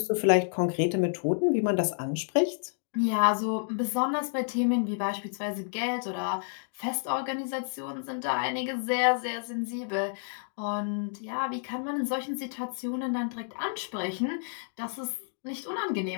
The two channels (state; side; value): silent; right; digital silence